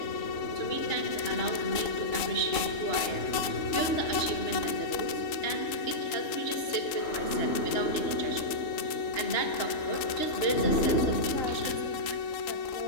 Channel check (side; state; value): right; late; 3.7 ms